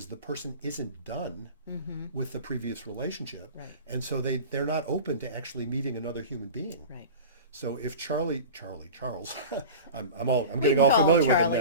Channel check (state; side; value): inverted; both; correlation -0.34